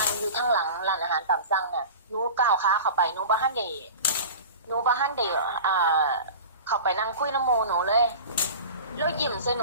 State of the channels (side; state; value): both; inverted; correlation -0.35